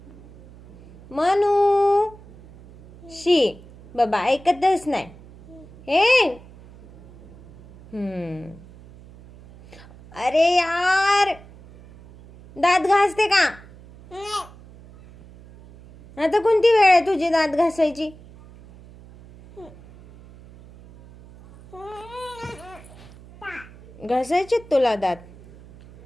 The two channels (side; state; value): right; noise; hum, 21 dB below the sound